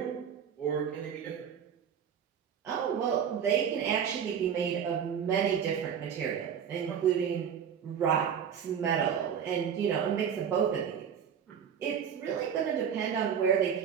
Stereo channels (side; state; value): left; quieter; 8.0 dB